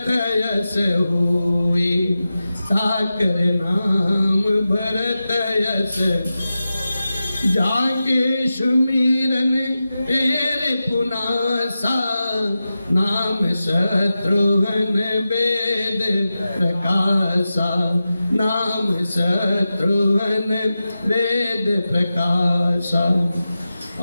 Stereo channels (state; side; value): inverted; both; correlation -0.93